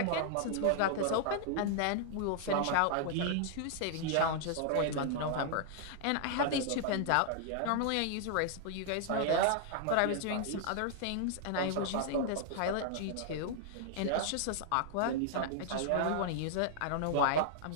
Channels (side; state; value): both; different; correlation -0.01